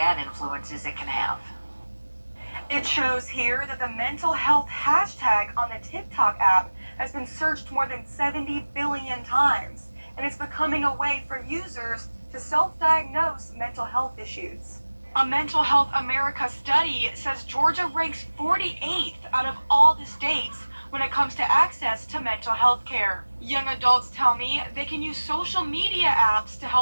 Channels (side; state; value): both; inverted; correlation -1.00